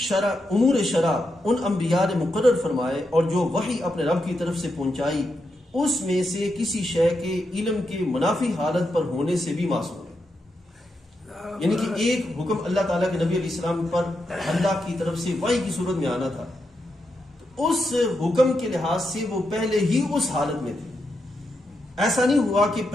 ان انبیاء نے مقرر فرمائے اور جو وحی اپنے رب کی طرف سے پہنچائی، اس میں سے کسی شے کے علم کے منافی حالت پر ہونے سے بھی معصوم ہے۔ یعنی کہ ایک حکم اللہ تعالیٰ کے نبی علیہ السلام پر اللہ کی طرف سے وحی کی صورت میں آنا تھا، تو اس حکم کے لحاظ سے وہ پہلے ہی اس حالت میں تھے۔ ایسا نہیں ہوا کہ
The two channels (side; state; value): both; normal; correlation 0.85